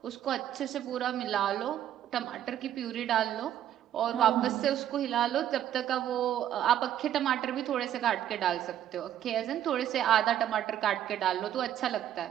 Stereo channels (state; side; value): quieter; left; 11.1 dB